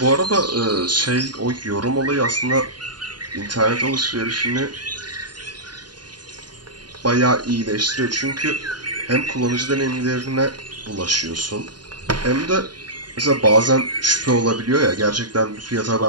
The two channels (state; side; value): late; left; 0.70 ms